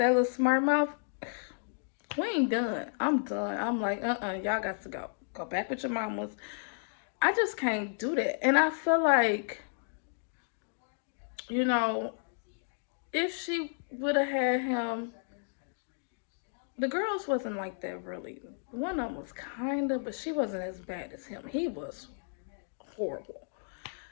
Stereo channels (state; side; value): silent; right; digital silence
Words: little smart mouth, we ain't done. I'm done. I'm like, y'all got to go. Go back with your mamas. I just can't do that. And I feel like, you know, if she would have had him, the girls wasn't like that really. One of them was kinda, but she wasn't as bad as him. He was horrible.